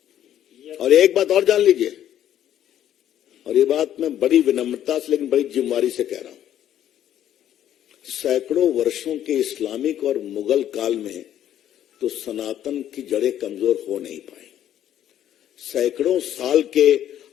और एक बात और जान लीजिए, और ये बात मैं बड़ी विनम्रता से लेकिन बड़ी जिम्मेदारी से कह रहा हूं, सैकड़ों वर्षों के इस्लामिक और मुगल काल में तो सनातन की जड़ें कमजोर हो नहीं पाई। सैकड़ों साल के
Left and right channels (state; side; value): quieter; right; 11.1 dB